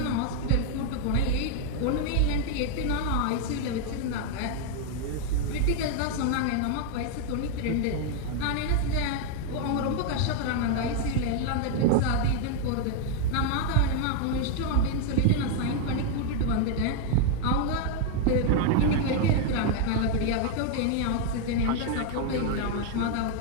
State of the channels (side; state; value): both; different; correlation 0.00